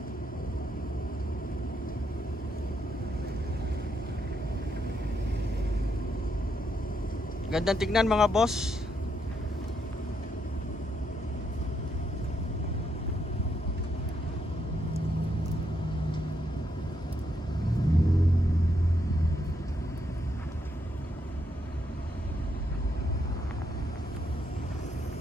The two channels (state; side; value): normal; both; correlation 0.78